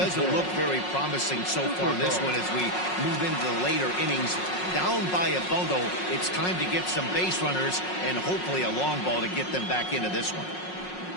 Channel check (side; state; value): right; late; 5.5 ms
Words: look very promising so far in this one as we move into the later innings. Down by a bundle, it's time to get some base runners and hopefully a long ball to get them back into this one.